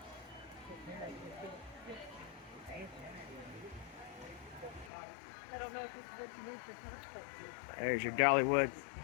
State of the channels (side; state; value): right; drops out; at 4.9 s